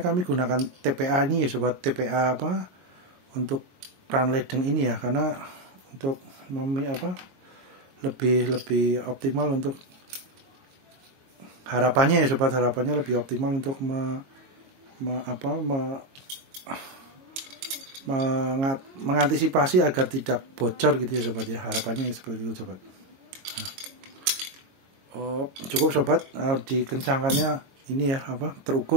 gunakan TPA ini ya sobat. TPA untuk keran ledeng ini ya, karena untuk lebih optimal untuk harapannya ya sobat, harapannya lebih optimal untuk mengantisipasi agar tidak bocor gitu ya sobat ya, harapannya seperti itu sobat. Cukup sobat, dikencangkannya ini ya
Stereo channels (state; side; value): late; left; 22 ms